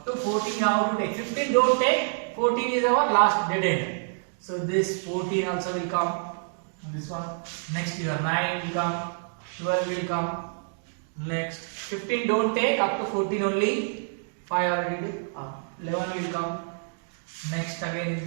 to 14 you have to take. 15 don't take. 14 is our last dead end. So this 14 also will come. This one. Next your 9 will come. 12 will come. Next 15 don't take. Up to 14 only. 5 already did. 11 will come. Next again in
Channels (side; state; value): left; silent; digital silence